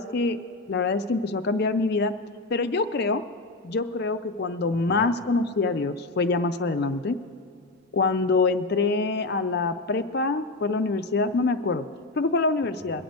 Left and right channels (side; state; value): right; quieter; 3.1 dB